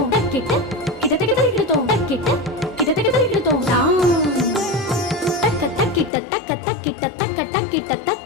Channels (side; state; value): right; drops out; at 6.1 s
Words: टक्किट किटतक तरिगितो टक्किट किटतक तरिगितो तां तक तक्किट तक तक्किट तक तक्किट